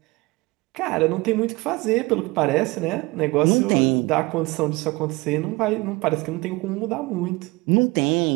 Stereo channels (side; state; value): left; quieter; 23.0 dB